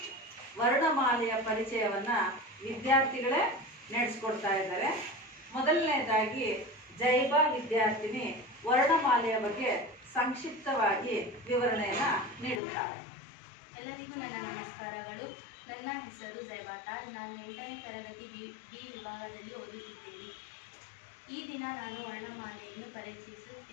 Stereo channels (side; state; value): right; drops out; at 12.6 s